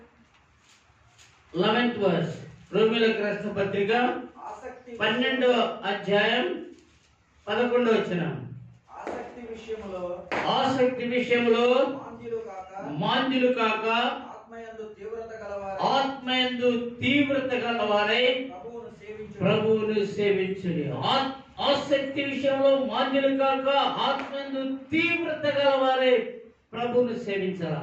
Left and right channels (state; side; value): identical; both; correlation 1.00